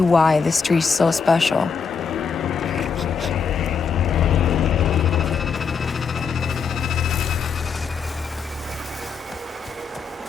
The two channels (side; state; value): right; quieter; 5.9 dB